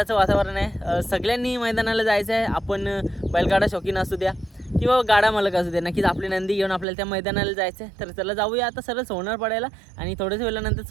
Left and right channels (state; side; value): drops out; left; at 6.9 s